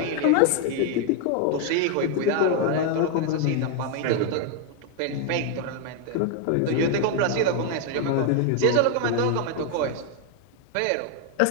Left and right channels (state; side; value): different; both; correlation 0.00